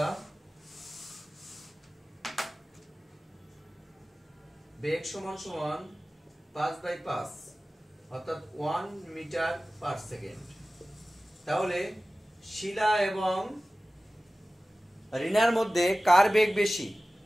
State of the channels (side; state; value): both; normal; correlation 0.96